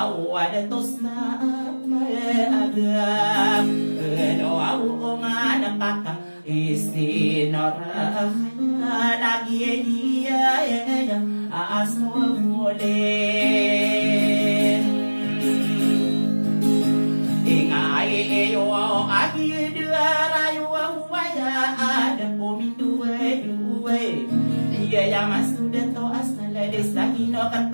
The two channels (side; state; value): both; inverted; correlation -1.00